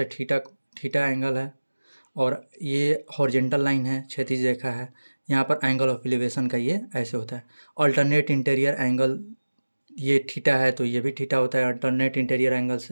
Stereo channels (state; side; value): inverted; both; correlation -1.00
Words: थीटा एंगल है और ये हॉरिजेंटल लाइन है, क्षैतिज रेखा है। यहाँ पर एंगल ऑफ एलिवेशन का ये ऐसे होता है। अल्टरनेट इंटीरियर एंगल, ये थीटा है तो ये भी थीटा होता है अल्टरनेट इंटीरियर एंगल